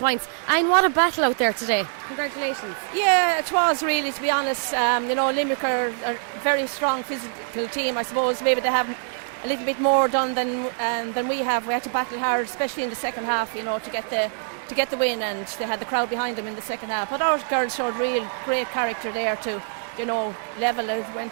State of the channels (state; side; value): silent; left; digital silence